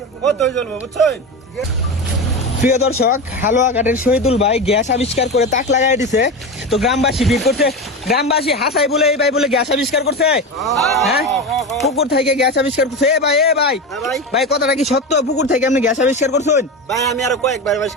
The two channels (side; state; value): both; normal; correlation 0.22